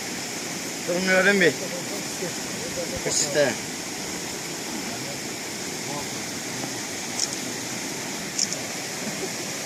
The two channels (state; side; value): identical; both; correlation 1.00